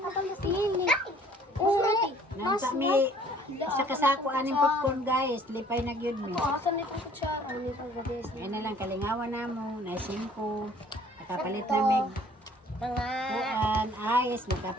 na pala sili. Oo. Nasa mi, sa kasako aning popcorn guys, lipay na gyud mi. Asan nito ko siya? Ano nito ba, guys? Ay na lang, kalingawan na mo, na 5. Nakapalit na mig. Kuan, ayos,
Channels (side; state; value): both; normal; correlation 0.56